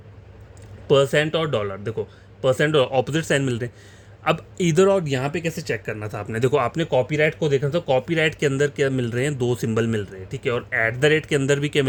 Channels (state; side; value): identical; both; correlation 1.00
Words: परसेंट और डॉलर, देखो परसेंट और ऑपोजिट साइन मिल रहे हैं। अब इधर और यहाँ पे कैसे चेक करना था आपने, देखो आपने कॉपीराइट को देखना था, कॉपीराइट के अंदर क्या मिल रहे हैं, दो सिंबल मिल रहे हैं, ठीक है, और एट द रेट के अंदर भी क्या